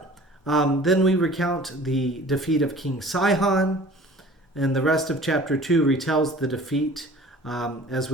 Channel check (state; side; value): normal; both; correlation 0.46